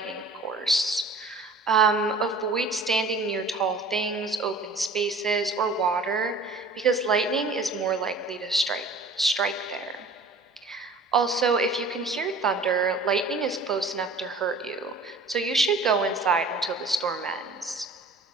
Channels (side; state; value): left; quieter; 3.3 dB